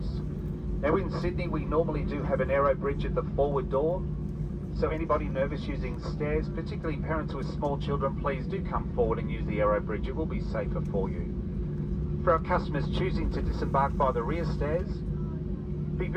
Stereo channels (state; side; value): identical; both; correlation 1.00